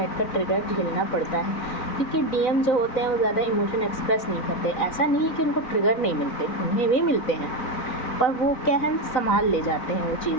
का ट्रिगर झेलना पड़ता है, क्योंकि डीएम जो होते हैं वो ज़्यादा इमोशन एक्सप्रेस नहीं करते। ऐसा नहीं है कि उनको ट्रिगर नहीं मिलते, उन्हें भी मिलते हैं, पर वो क्या है, संभाल ले जाते हैं वो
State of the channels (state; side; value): late; right; 4.0 ms